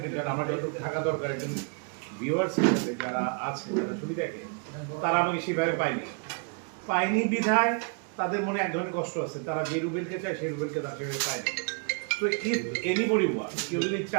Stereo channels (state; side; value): quieter; left; 37.1 dB